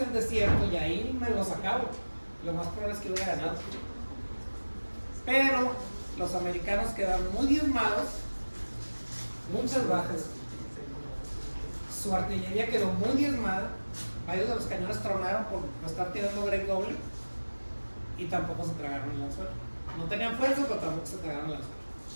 el desierto y ahí me los acabo. Lo más probable es que hubiera ganado. Pero los americanos quedaron muy diezmados, muchas bajas. Su artillería quedó muy diezmada. Varios de los cañones tronaron por estar tirando break doble y tampoco se tragaron el anzuelo. No tenían fuerza, pero tampoco se tragaron el anzuelo.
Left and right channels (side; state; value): both; inverted; correlation -1.00